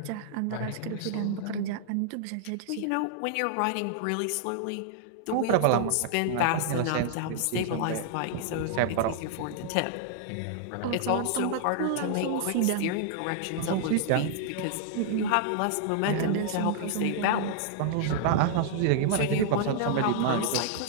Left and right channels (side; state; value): both; different; correlation -0.01